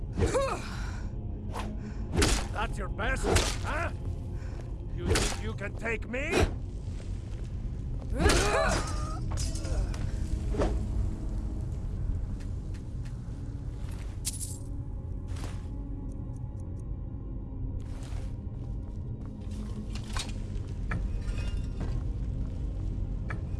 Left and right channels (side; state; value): both; identical; correlation 1.00